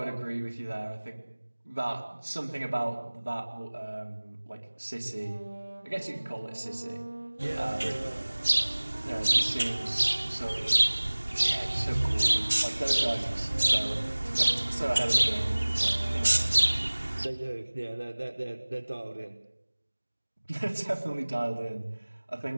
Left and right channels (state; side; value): inverted; both; correlation -1.00